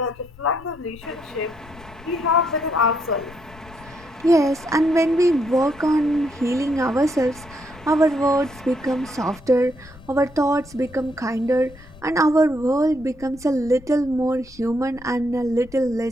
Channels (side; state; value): left; noise; rumble, 22 dB below the sound